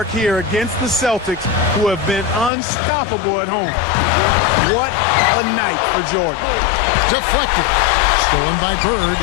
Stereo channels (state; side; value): drops out; right; at 2.5 s